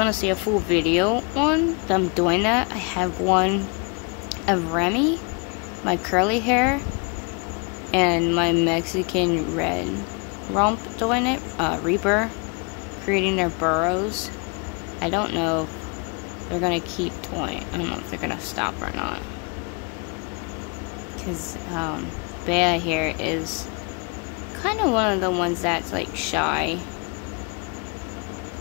to see a full video on them doing that, I have one of Remy, my curly hair, and my Mexican red rump doing it, Reaper, creating their burrows. I don't know if they're going to keep doing. I don't know if they're going to stop or not. Because Bea here is kind of one of the ones that's like shy.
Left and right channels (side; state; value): right; quieter; 33.4 dB